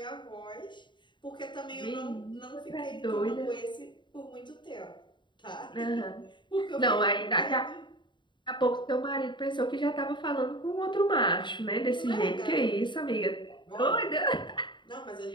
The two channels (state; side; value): late; right; 0.23 ms